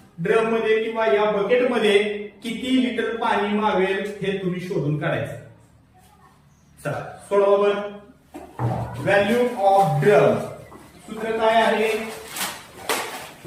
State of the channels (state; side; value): identical; both; correlation 1.00